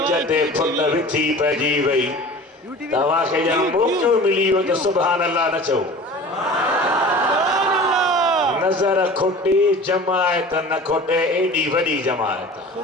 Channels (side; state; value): both; normal; correlation 0.40